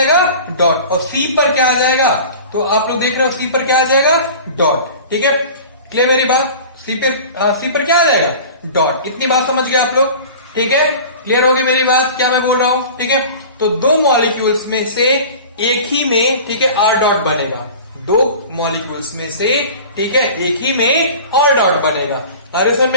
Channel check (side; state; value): both; inverted; correlation -0.39